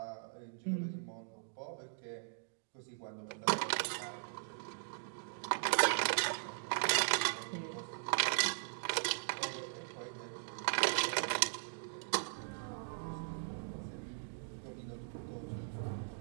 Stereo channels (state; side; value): silent; left; digital silence